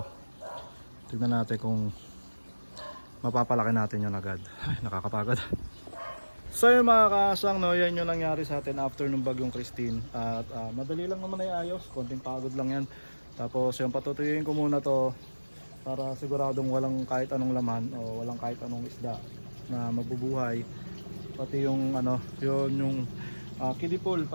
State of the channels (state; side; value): inverted; both; correlation -1.00